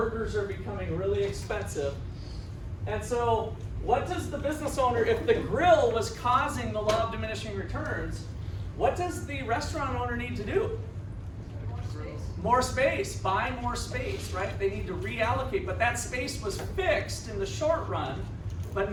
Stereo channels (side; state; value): both; identical; correlation 1.00